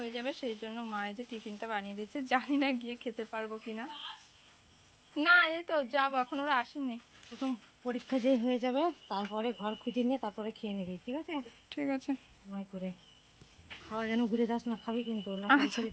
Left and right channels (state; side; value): identical; both; correlation 1.00